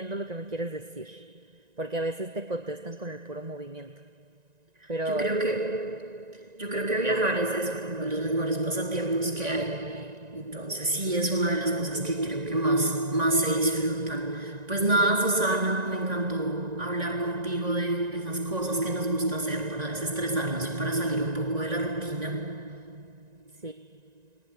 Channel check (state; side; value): late; left; 1.9 ms